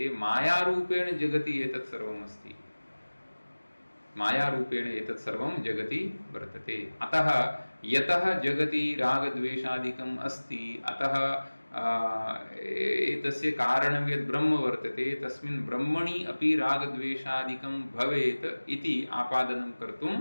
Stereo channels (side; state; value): both; inverted; correlation -1.00